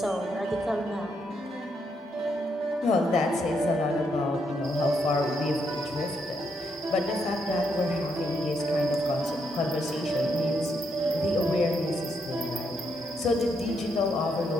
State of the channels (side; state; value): both; normal; correlation 0.77